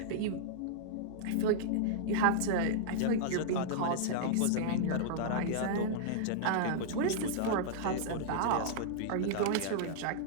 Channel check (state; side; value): different; both; correlation -0.02